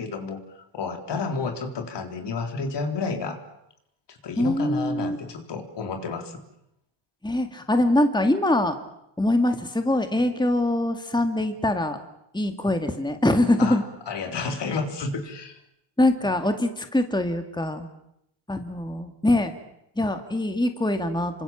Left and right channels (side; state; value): both; normal; correlation 0.76